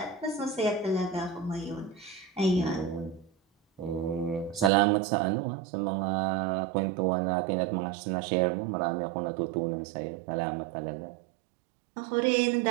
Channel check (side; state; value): left; drops out; at 4.7 s